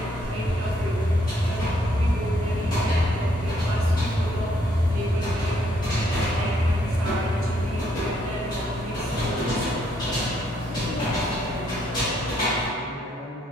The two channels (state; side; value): normal; both; correlation 0.71